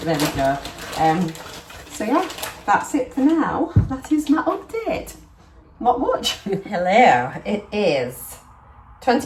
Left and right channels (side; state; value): both; identical; correlation 1.00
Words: we go. So yeah, that's it for now. That is my update. Not much. Hello, it is